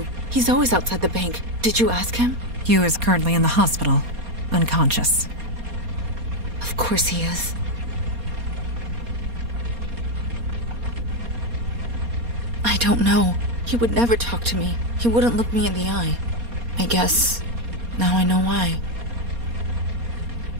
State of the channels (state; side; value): late; left; 4.2 ms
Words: He's always outside the bank. Did you ask him? Hugh is currently in the hospital, unconscious. Of course he is. I don't know. He would never talk to me. He wouldn't look me in the eye. I guess now I know why.